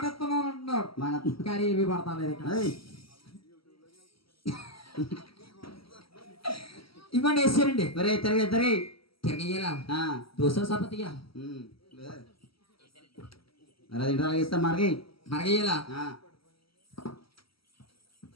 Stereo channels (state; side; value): late; right; 0.75 ms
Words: ఇస్తున్నాను అంటున్నాడు మన కానీ ఇవి పడతాలేదు ఇక్కడ ఏయ్ ఇవ్వండి వేసారండి ఒరే తిరిగి తిరిగి తిరగయ్యాలా ఆ, దోశ సపతిగా ఉమ్. మరి అది ఇంట్లో ఇస్తాం మరికి మరగయ్యాలా ఆ.